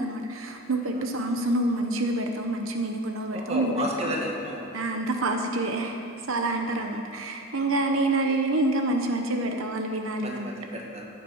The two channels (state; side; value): normal; both; correlation 0.28